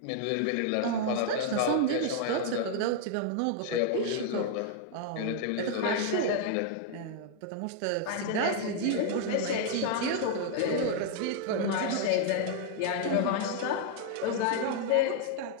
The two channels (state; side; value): different; both; correlation 0.00